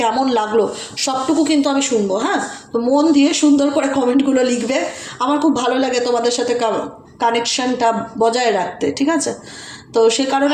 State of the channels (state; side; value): identical; both; correlation 1.00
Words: কেমন লাগলো সবটুকু কিন্তু আমি শুনবো। হ্যাঁ, তো মন দিয়ে সুন্দর করে কমেন্টগুলো লিখবে, আমার খুব ভালো লাগে তোমাদের সাথে কানেকশানটা বজায় রাখতে, ঠিক আছে। তো সে